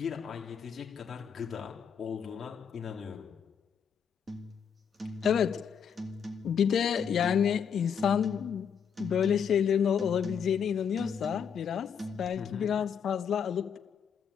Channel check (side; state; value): right; quieter; 7.4 dB